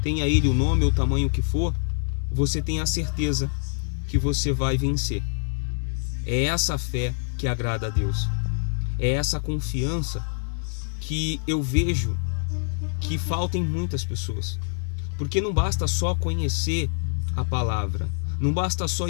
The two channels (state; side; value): silent; right; 61 dB below the other